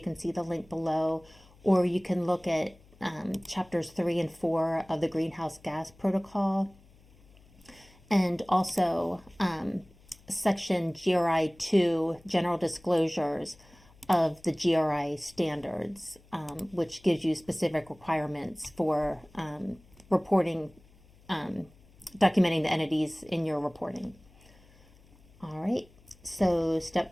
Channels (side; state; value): left; noise; hum, 27 dB below the sound